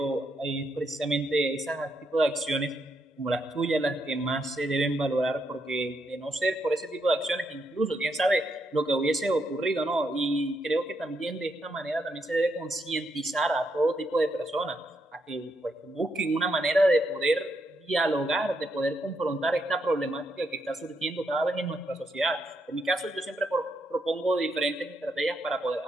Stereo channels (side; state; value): both; normal; correlation 0.79